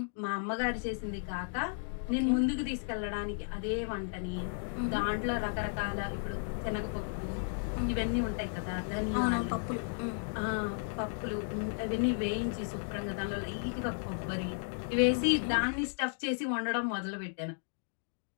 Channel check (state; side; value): silent; right; digital silence